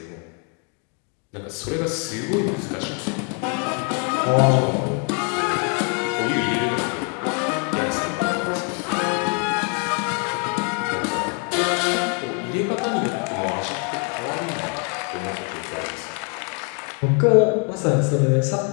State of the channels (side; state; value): right; quieter; 38.3 dB